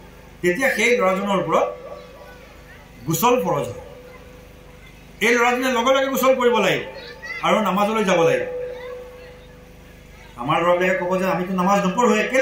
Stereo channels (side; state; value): both; identical; correlation 1.00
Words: তেতিয়া সেই ল'ৰাজনৰ ওপৰত গোসল ফৰজ হয়। এই ল'ৰাজনে লগে লগে গোসল কৰিব লাগিব আৰু নামাজলৈ যাব লাগিব। আমাৰ ল'ৰাবিলাকে ক'ব যে আমিতো নামাজ নপঢ়োৱে,